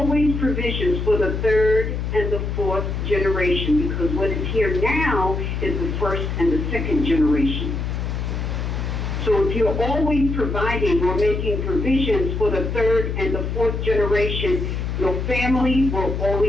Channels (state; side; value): noise; left; hum, 2 dB below the sound